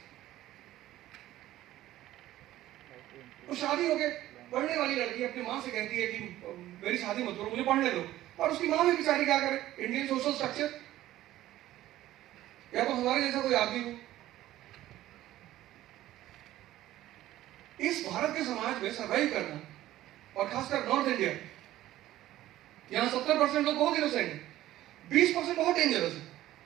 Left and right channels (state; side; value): quieter; left; 14.5 dB